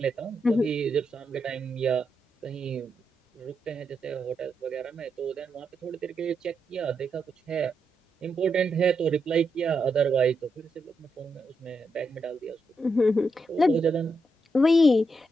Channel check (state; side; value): normal; both; correlation 0.83